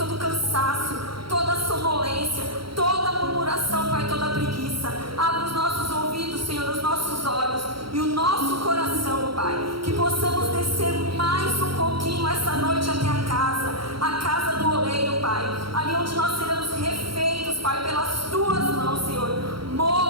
o cansaço, toda a sonolência, toda a murmuração, Pai, toda a preguiça. Abra os nossos ouvidos, Senhor, os nossos olhos e o nosso coração, Pai. Que possamos descer mais um pouquinho essa noite até a casa do oleiro, Pai. Ali onde nós seremos refeitos, Pai, pelas Tuas mãos, Senhor.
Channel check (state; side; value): late; left; 0.74 ms